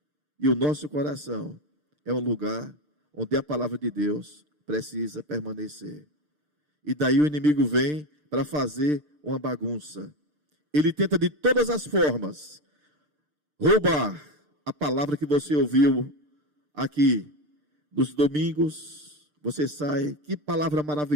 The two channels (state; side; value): late; left; 6.7 ms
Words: E o nosso coração é um lugar onde a palavra de Deus precisa permanecer. E daí o inimigo vem para fazer uma bagunça. Ele tenta de todas as formas roubar a palavra que você ouviu aqui nos domingos. Você sai, que palavra